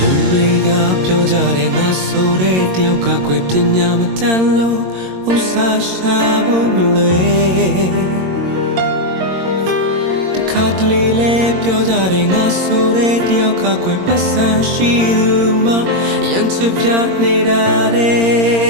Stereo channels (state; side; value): late; left; 22 ms